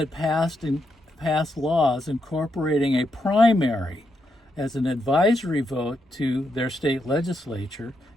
passed laws incorporating a primary as an advisory vote to their state legislature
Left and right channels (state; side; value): normal; both; correlation 0.82